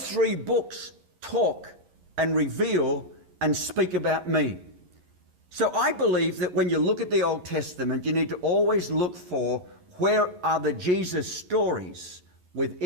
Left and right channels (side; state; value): left; late; 11 ms